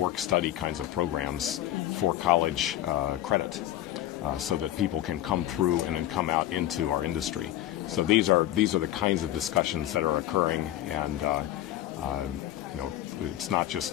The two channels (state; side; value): quieter; right; 13.4 dB